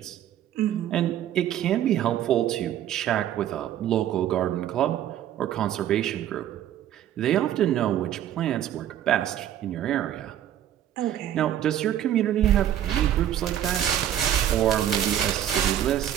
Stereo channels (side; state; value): left; quieter; 11.1 dB